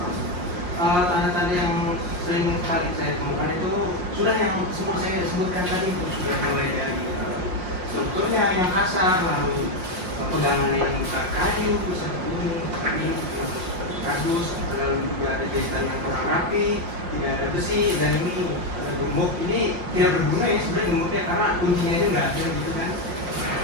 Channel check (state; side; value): late; left; 5.6 ms